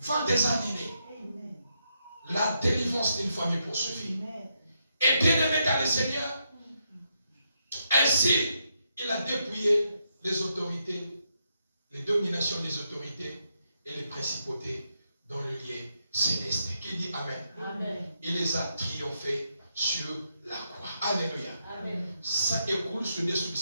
est annulé. La délivrance d'une famille poursuivie. Et bien aimé dans le Seigneur, ainsi il a dépouillé les autorités, les dominations des autorités et les principautés dans le lieu céleste. Qui dit amen. Amen. Il les a triomphés sur la croix. Alléluia. Amen. Ça écoule sur des sous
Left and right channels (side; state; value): both; inverted; correlation -0.81